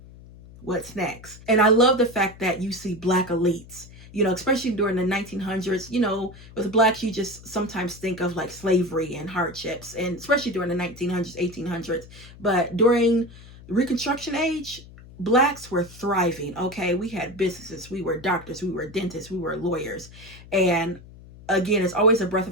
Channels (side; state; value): left; noise; hum, 19 dB below the sound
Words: what's next? And I love the fact that you see Black elites, you know, especially during the 1900s. You know, with Blacks, you just sometimes think of like slavery and hardships, and especially during the 1900s, 1800s. But during the Reconstruction age, Blacks were thriving, okay? We had businesses, we were doctors, we were dentists, we were lawyers. And again, it's always a breath